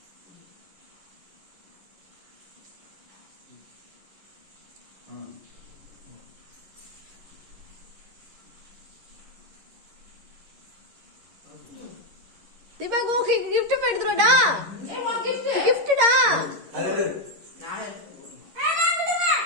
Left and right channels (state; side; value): late; left; 11 ms